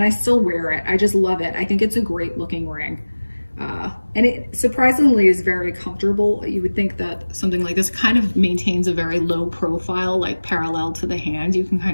I still wear it. I just love it. I think it's a great looking ring. And it surprisingly is very comfortable. You would think that something like this kind of maintains a very low profile, like parallel to the hand. You can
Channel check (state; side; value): inverted; both; correlation -1.00